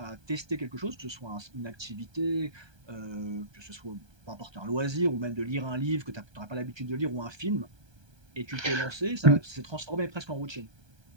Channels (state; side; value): late; left; 1.3 ms